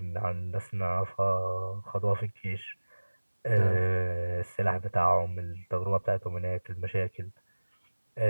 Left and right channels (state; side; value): inverted; both; correlation -1.00